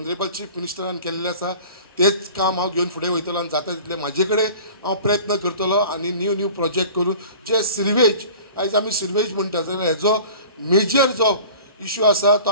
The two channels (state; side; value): inverted; both; correlation -0.43